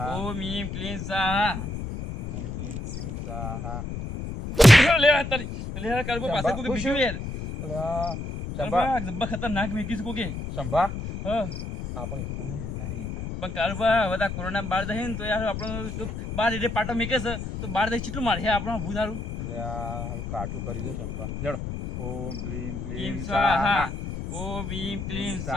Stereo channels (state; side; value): noise; left; rumble, 6 dB below the sound